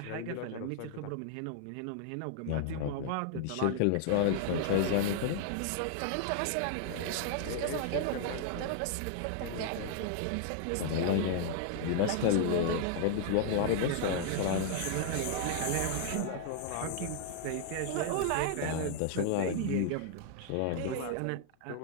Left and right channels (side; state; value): both; different; correlation 0.00